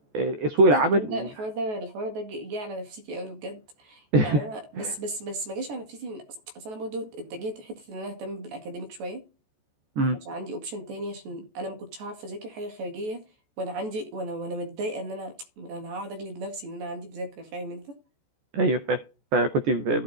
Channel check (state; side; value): late; left; 14 ms